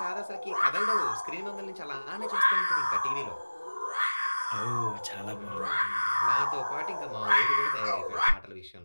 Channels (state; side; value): inverted; both; correlation -1.00